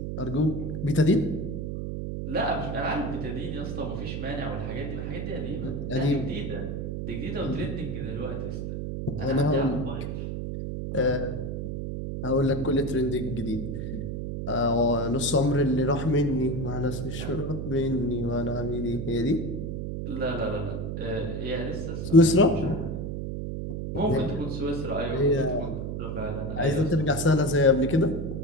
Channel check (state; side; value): noise; right; hum, 4 dB below the sound